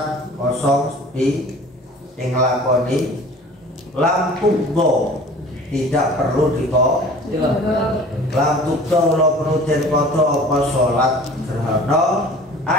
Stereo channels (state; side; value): normal; both; correlation 0.45